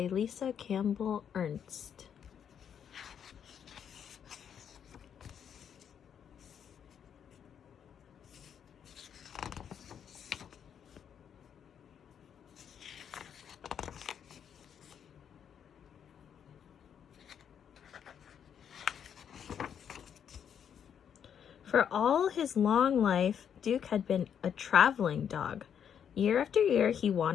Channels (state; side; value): quieter; right; 8.3 dB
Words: Lisa Campbell Ernst. For all his long life, Duke had been a traveling dog. Year after year, he